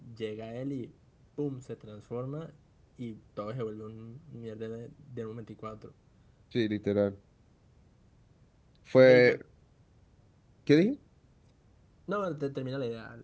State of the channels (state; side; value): identical; both; correlation 1.00